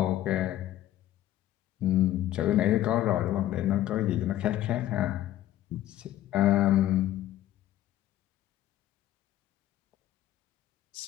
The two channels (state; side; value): quieter; right; 13.4 dB